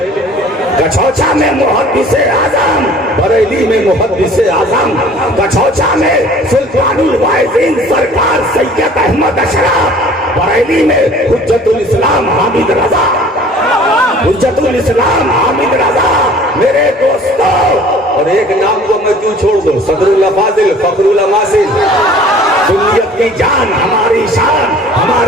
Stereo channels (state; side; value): normal; both; correlation 0.49